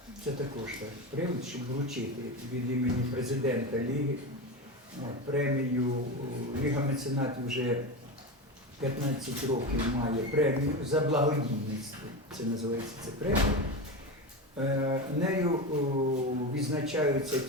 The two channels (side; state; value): both; normal; correlation 0.20